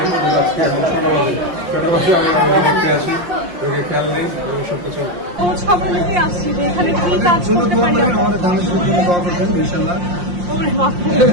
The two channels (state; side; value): late; left; 5.7 ms